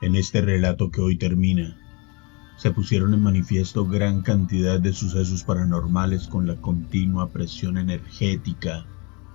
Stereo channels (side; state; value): right; quieter; 30.0 dB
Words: En este relato que hoy termina, se pusieron en manifiesto gran cantidad de sucesos paranormales con la continua presión energética,